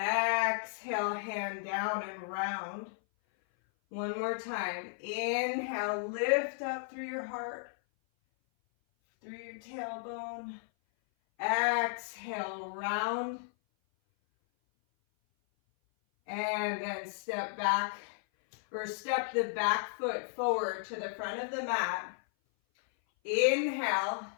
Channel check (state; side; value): silent; right; 55 dB below the other